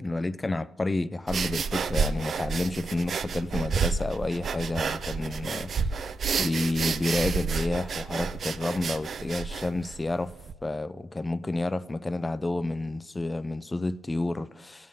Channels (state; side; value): normal; both; correlation 0.88